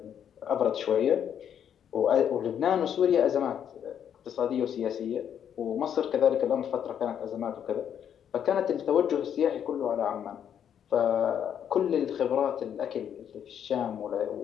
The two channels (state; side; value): quieter; right; 8.9 dB